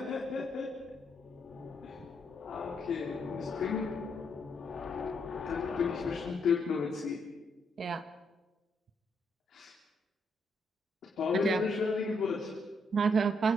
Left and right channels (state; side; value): normal; both; correlation 0.75